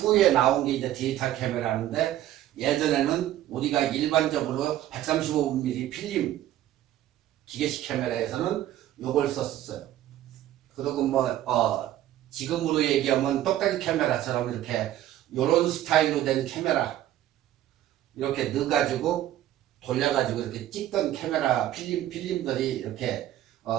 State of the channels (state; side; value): quieter; left; 13.0 dB